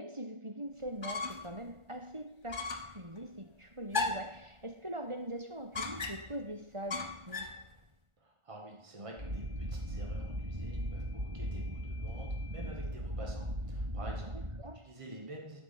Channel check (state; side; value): late; left; 1.3 ms